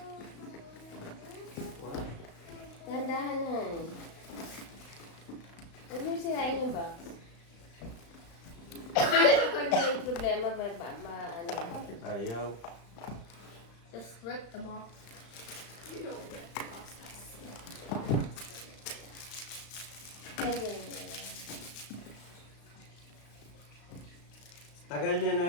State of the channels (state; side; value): late; right; 35 ms